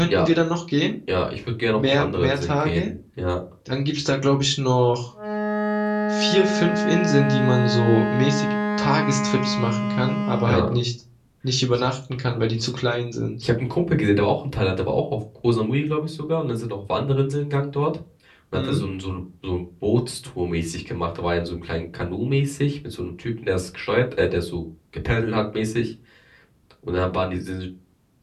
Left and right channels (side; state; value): both; identical; correlation 1.00